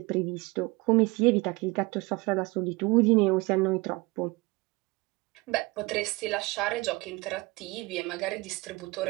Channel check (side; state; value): left; quieter; 24.2 dB